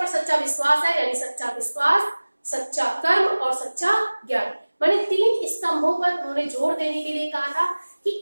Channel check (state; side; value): inverted; both; correlation -1.00